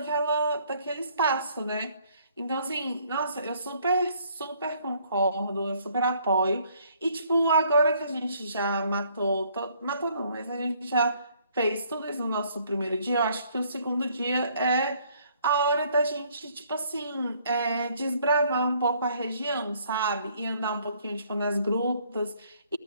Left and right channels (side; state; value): both; inverted; correlation -0.64